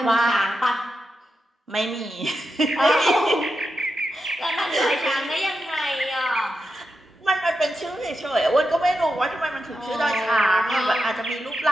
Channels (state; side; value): normal; both; correlation 0.88